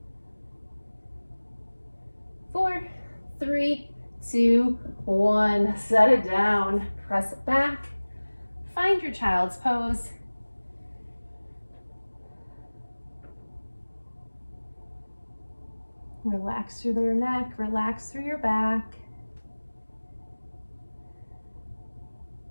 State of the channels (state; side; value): inverted; both; correlation -1.00